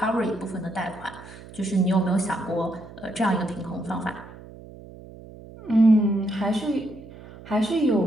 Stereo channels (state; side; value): noise; right; hum, 17 dB below the sound